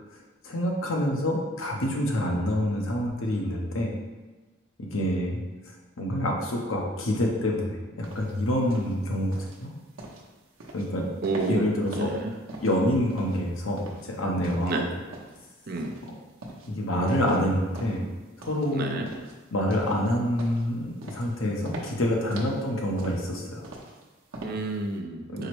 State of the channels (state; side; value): normal; both; correlation 0.56